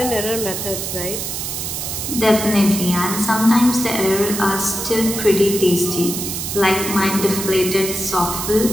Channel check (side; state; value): right; noise; hiss, 4 dB below the sound